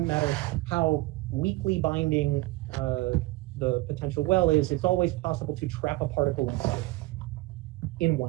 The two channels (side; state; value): left; quieter; 20.6 dB